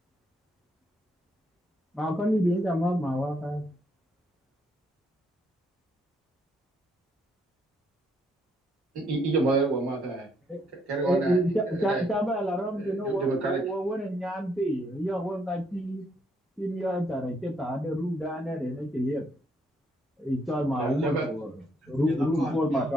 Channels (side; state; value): both; normal; correlation 0.72